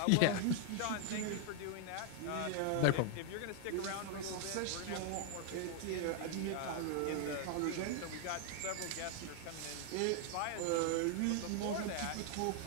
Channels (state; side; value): different; both; correlation 0.00